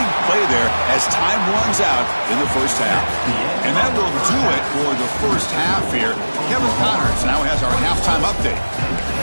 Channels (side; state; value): both; inverted; correlation -1.00